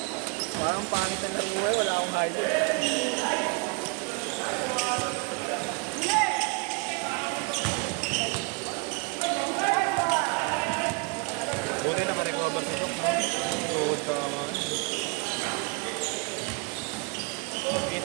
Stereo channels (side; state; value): left; quieter; 31.7 dB